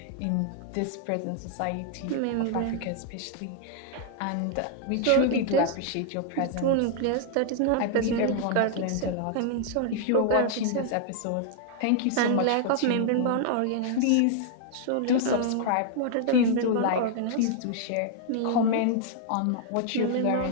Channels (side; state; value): both; different; correlation -0.01